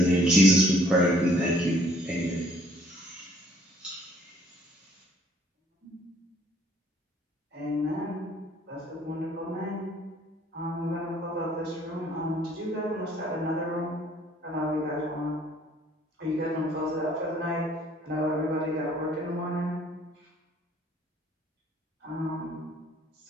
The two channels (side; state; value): both; normal; correlation 0.60